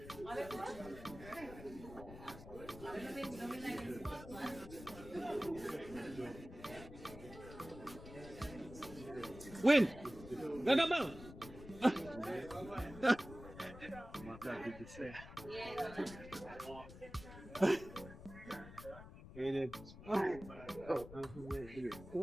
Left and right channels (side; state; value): left; noise; rumble, 14 dB below the sound